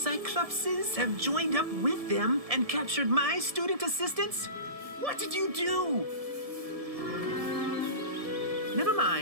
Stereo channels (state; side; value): late; left; 1.7 ms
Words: have joined up with them and captured my student assistants? What did you do? Never